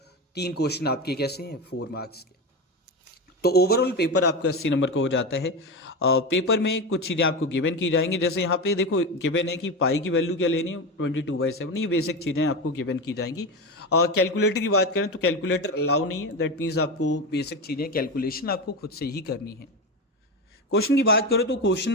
3 क्वेश्चन आपके कैसे हैं 4 मार्क्स के। तो ओवरऑल पेपर आपका 80 नंबर का हो जाता है। पेपर में कुछ चीज़ें आपको गिवन की जाएंगी, जैसे यहाँ पे देखो गिवन है कि पाई की वैल्यू क्या लेनी है 22/7, ये बेसिक चीज़ें आपको गिवन की जाएंगी। कैलकुलेटर की बात करें तो कैलकुलेटर अलाउ नहीं है, दैट मीन्स आपको बेसिक चीज़ें कैलकुलेशन आपको खुद से ही करनी है। क्वेश्चन की बात करो तो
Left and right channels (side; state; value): both; normal; correlation 0.19